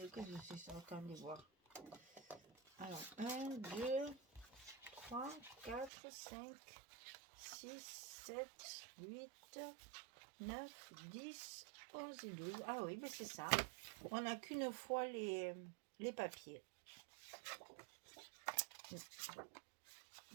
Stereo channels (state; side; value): drops out; left; at 5.9 s